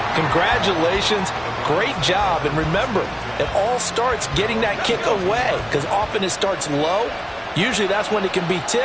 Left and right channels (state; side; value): identical; both; correlation 1.00